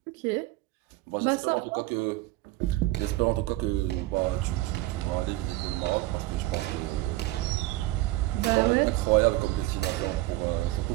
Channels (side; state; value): left; quieter; 18.2 dB